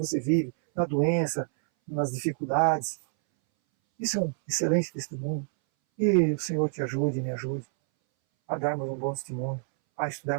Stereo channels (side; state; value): left; silent; 59 dB below the other